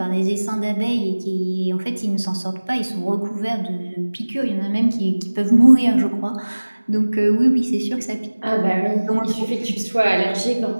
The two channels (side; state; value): both; inverted; correlation -1.00